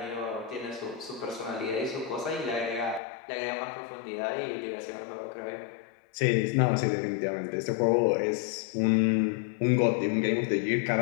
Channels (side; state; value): right; drops out; at 3.0 s